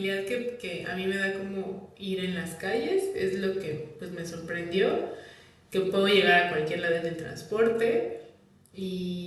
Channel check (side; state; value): both; identical; correlation 1.00